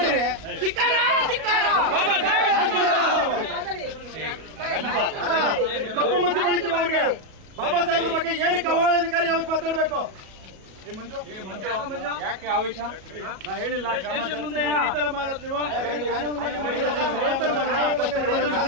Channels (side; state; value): left; late; 38 ms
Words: ಕಪ್ಪು ಮಸಿ ಬಳಿತೀವಿ ಅವ್ರಿಗೆ. ಬಾಬಾ ಸಾಹೇಬ್ರ ಬಗ್ಗೆ ಏನಕ್ಕೆ ಅವಹೇಳನಕಾರಿ ಯಾವತ್ತು ಮಾತಾಡಬೇಕು? ಯಾಕೆ ಆವೇಶ? ನಾ ಹೇಳಿಲ್ಲ ಮುಂದೆ ಈ ತರ ಮಾಡೋದು ನೀವು